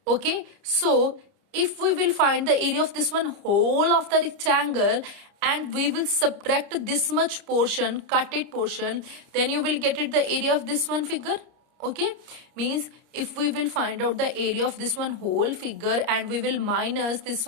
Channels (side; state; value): left; late; 30 ms